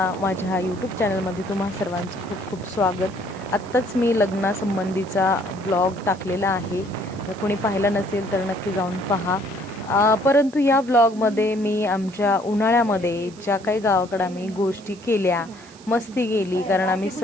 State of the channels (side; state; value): right; noise; hiss, 24 dB below the sound